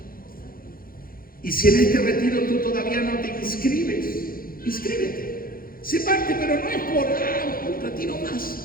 Y si en este retiro tú todavía no te inscribes, inscríbete. Se parte, pero no es por un retiro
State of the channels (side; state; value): right; late; 0.42 ms